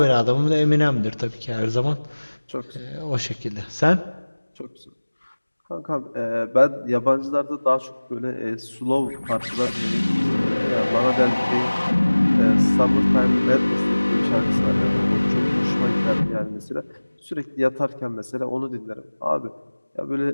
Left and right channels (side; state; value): both; inverted; correlation -1.00